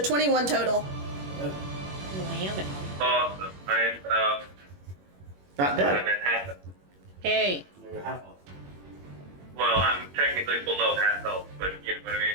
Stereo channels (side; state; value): left; late; 21 ms